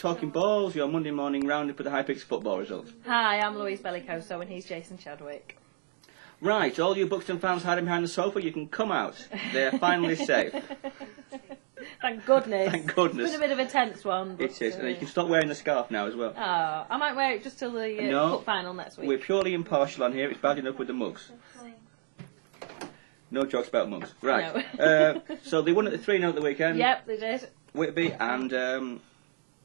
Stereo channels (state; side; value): silent; left; digital silence